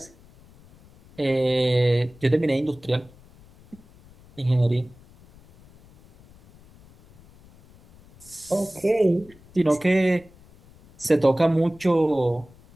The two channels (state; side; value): noise; left; rumble, 26 dB below the sound